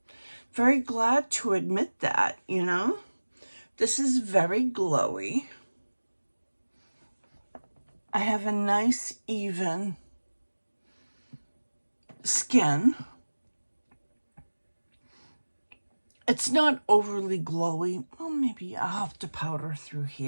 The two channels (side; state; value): both; inverted; correlation -1.00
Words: very glad to admit that, you know. This is very glowy. I have a nice, even skin. It's not overly glowy. Well, maybe I'll have to powder through